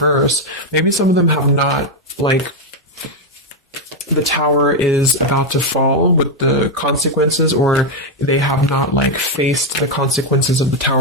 maybe some of them have not, like, the tower is about to fall with the consequences, or they have not like faced the consequences of the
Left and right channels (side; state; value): both; normal; correlation 0.03